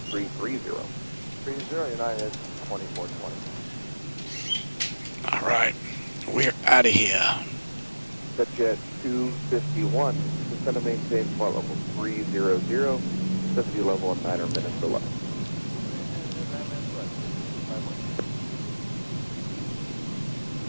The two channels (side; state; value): both; inverted; correlation -1.00